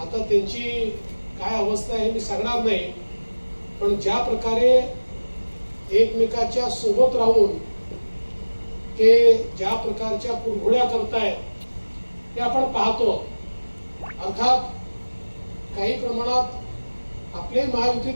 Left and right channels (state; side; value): inverted; both; correlation -1.00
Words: त्यांची काय अवस्था आहे मी सांगणार नाही, पण ज्या प्रकारे एकमेकाच्या सोबत राहून ते ज्या प्रकारच्या कुरघोड्या करतायत ते आपण पाहतो। अर्थात काही प्रमाणात आपल्या महायुतीत